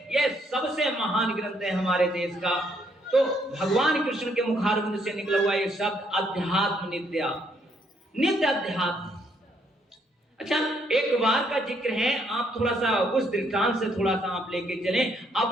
ये सबसे महान ग्रंथ है हमारे देश का। तो भगवान कृष्ण के मुखारविंद से निकला हुआ ये शब्द अध्यात्म नित्या, नित्य अध्यात्म। अच्छा, एक बार का जिक्र है, आप थोड़ा सा उस दृष्टांत से थोड़ा सा आप लेके चलें।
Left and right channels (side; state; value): both; normal; correlation 0.71